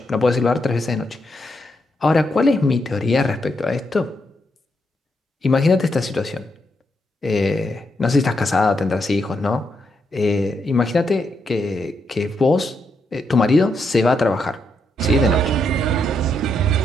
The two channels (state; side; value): normal; both; correlation 0.80